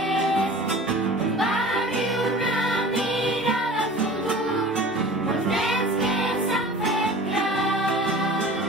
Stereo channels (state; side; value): normal; both; correlation 0.40